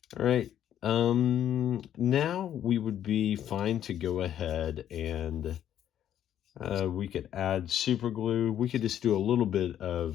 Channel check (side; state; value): right; quieter; 10.5 dB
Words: All right, now we would be fine to go ahead and we could add super glue. We could just do a little bit